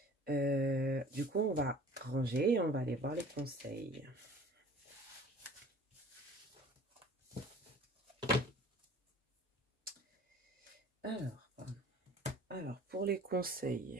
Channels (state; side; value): normal; both; correlation 0.47